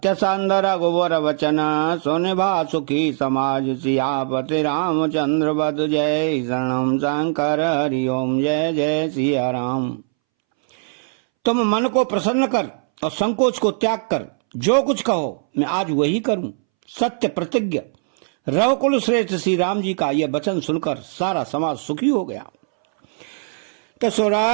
संद रघुवर वचन, सुन भा सुखी समाज। सियापति रामचंद्र बद जय, शरणम शंकर हरि ओम जय जय सिया राम। तुम मन को प्रसन्न कर और संकोच को त्याग कर जो कुछ कहो मैं आज वही करूं। सत्य प्रतिज्ञ रवकुल श्रेष्ठ श्री राम जी का यह वचन सुनकर सारा समाज सुखी हो गया। तो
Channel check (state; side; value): silent; left; 64 dB below the other